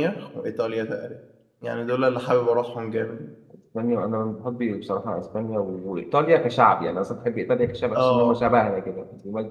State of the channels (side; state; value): both; identical; correlation 1.00